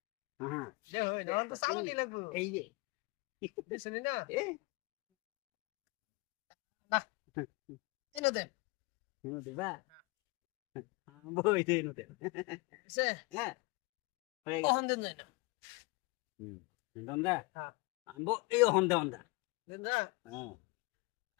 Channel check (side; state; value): right; quieter; 26.3 dB